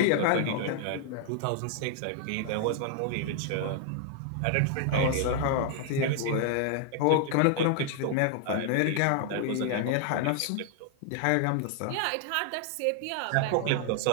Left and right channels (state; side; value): different; both; correlation 0.00